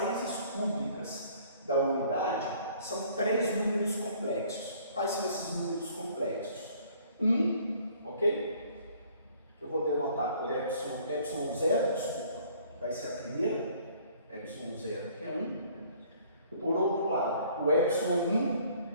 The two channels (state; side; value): inverted; both; correlation -0.57